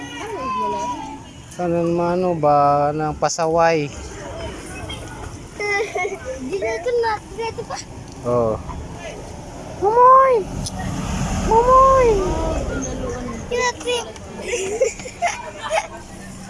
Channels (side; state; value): both; identical; correlation 1.00